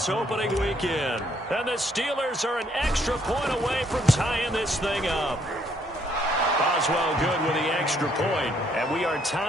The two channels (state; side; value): normal; both; correlation 0.68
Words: opening weekend. And the Steelers are an extra point away from tying this thing up. Boswell good with the extra point, and we are